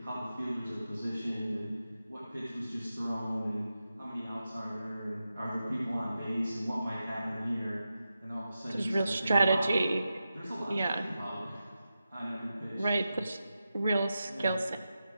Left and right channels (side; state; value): both; inverted; correlation -0.91